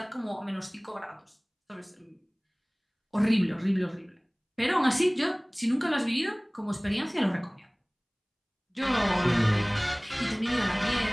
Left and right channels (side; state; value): both; identical; correlation 1.00